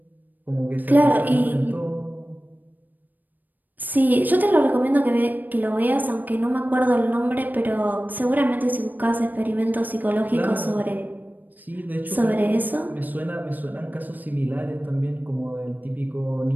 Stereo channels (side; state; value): left; late; 0.086 ms